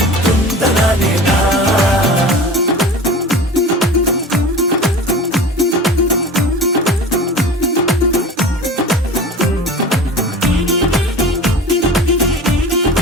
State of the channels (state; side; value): normal; both; correlation 0.35